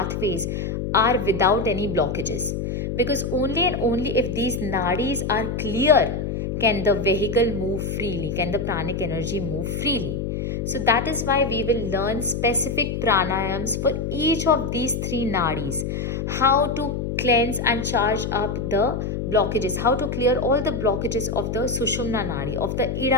are without any blockages. Because only and only if these nadis are clear can the vehicle move freely, can the pranic energy move freely. So that is why we will learn specific pranayams for each of these 3 nadis. How to cleanse and charge up the blockages, how to clear all the blockages of the Sushumna nadi, of the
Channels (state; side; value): noise; left; hum, 3 dB below the sound